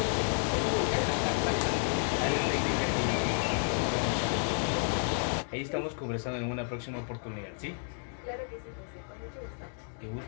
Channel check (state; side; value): silent; right; 57 dB below the other